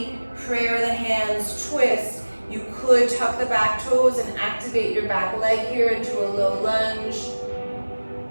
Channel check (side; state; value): both; inverted; correlation -1.00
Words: prayer the hands, twist. You could tuck the back toes and activate your back leg here into a low lunge.